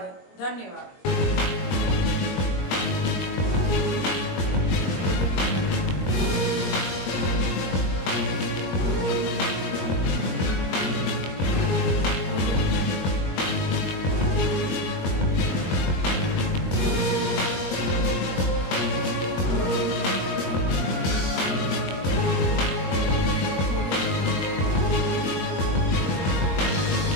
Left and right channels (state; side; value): late; right; 21 ms